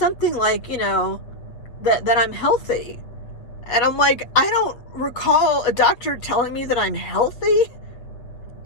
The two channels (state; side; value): late; right; 8.0 ms